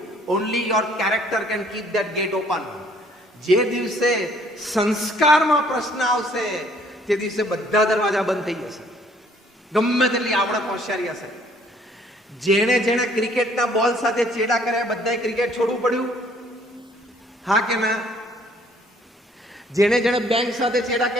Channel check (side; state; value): both; normal; correlation 0.61